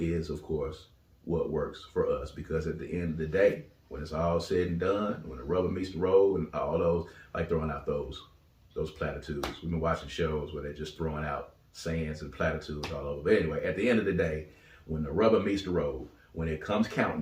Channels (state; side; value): identical; both; correlation 1.00